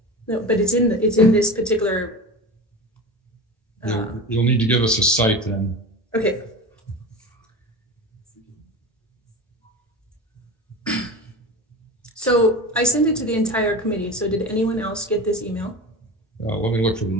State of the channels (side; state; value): both; normal; correlation 0.30